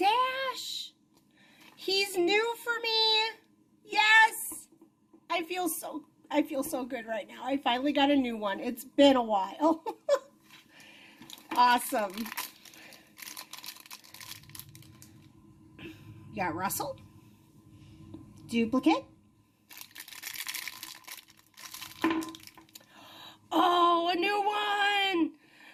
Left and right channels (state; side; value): identical; both; correlation 1.00